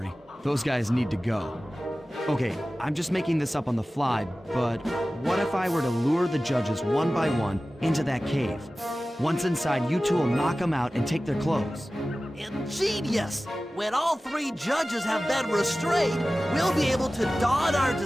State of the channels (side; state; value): both; normal; correlation 0.96